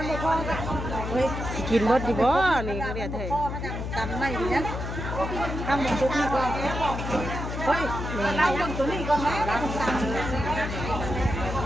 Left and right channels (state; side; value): noise; left; hum, 5 dB below the sound